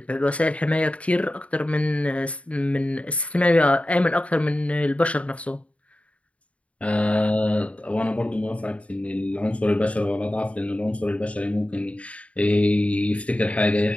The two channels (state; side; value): late; right; 0.064 ms